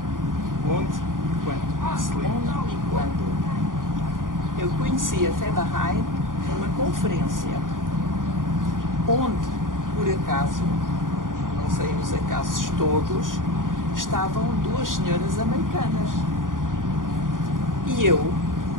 Onde e quando? Se lembra? Onde e quando? Eu conheci a fé Bahá'í numa conferência, onde, por acaso, não sei os acasos todos, estavam duas senhoras americanas. E eu,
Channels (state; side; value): late; left; 0.89 ms